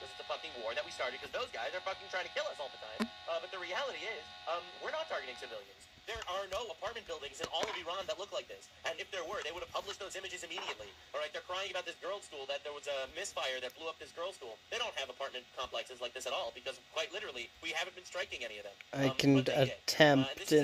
it's a fucking war that we started because those guys are fucking trying to kill us all the time. But the reality is, we're not targeting civilians. There are no apartment buildings in all of Iran that look like this. And if there were, they would have published those images immediately. All right, they're crying about this girls' school, that there was a misfire that blew up this girls' school. They don't have apartment complexes like this at all because, quite literally, we haven't been striking any of them. I can attempt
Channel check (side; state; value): both; identical; correlation 1.00